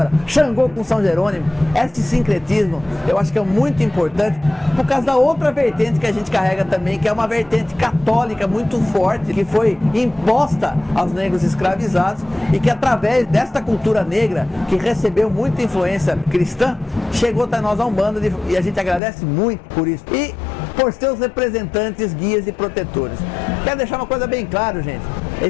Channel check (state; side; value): drops out; right; at 19.0 s